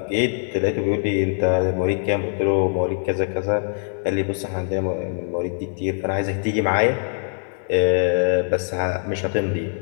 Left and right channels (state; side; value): silent; right; 64 dB below the other